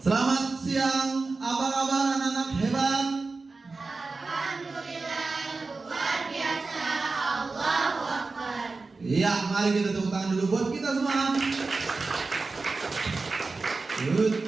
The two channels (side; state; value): left; quieter; 3.9 dB